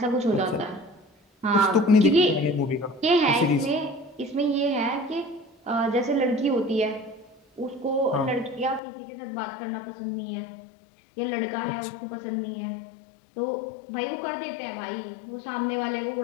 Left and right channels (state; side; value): drops out; right; at 8.8 s